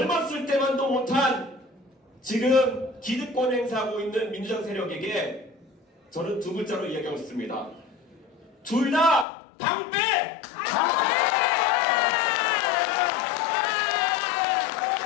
때만도 못한 지금 기득권 행사하고 있는 민주당 세력에게 저는 두 글자로 이야기하고 있습니다. 둘 다 방패!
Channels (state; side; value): drops out; right; at 9.2 s